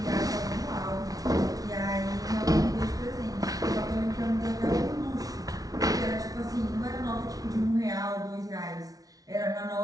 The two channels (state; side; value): late; left; 0.18 ms